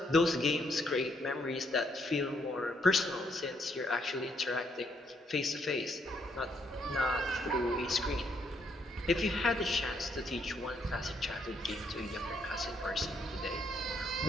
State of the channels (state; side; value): normal; both; correlation 0.73